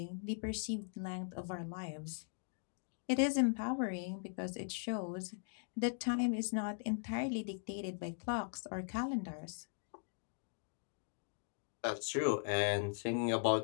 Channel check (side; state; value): right; silent; digital silence